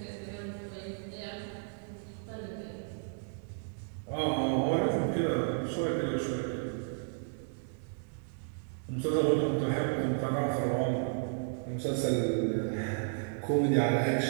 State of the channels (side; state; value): left; silent; digital silence